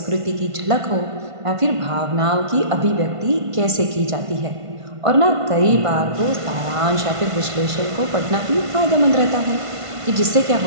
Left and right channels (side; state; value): left; late; 1.5 ms